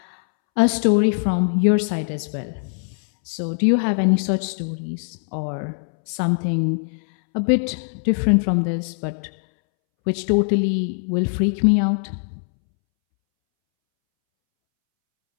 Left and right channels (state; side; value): silent; right; 65 dB below the other